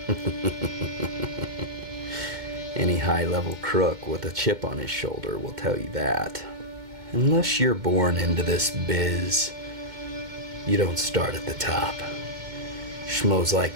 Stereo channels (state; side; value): late; left; 2.2 ms